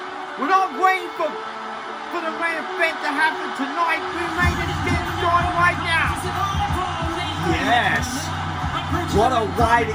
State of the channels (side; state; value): both; identical; correlation 1.00